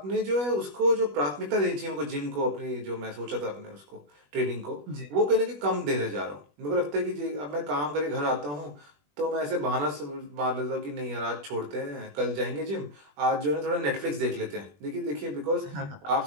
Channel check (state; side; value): late; left; 21 ms